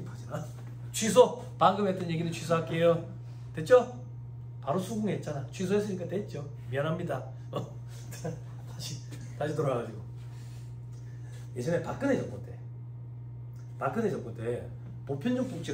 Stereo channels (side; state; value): both; identical; correlation 1.00